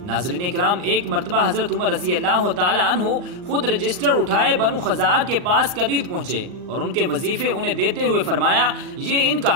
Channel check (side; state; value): left; late; 39 ms